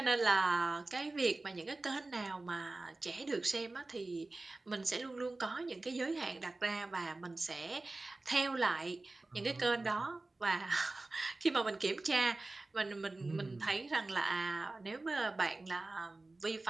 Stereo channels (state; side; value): quieter; left; 3.1 dB